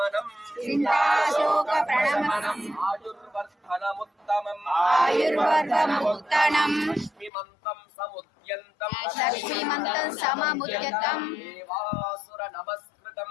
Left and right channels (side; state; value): right; drops out; at 7.3 s